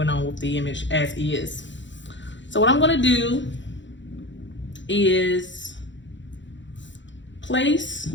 on with the image as is. So what I'm going to do is place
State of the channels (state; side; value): late; right; 0.54 ms